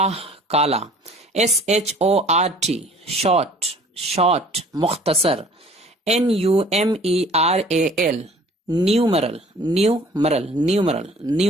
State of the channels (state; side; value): normal; both; correlation 0.51